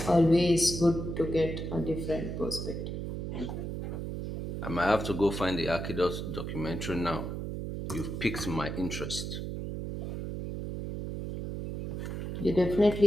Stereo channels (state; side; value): noise; right; hum, 5 dB below the sound